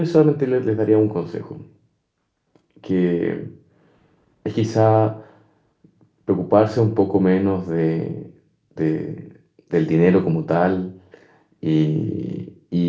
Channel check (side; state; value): both; identical; correlation 1.00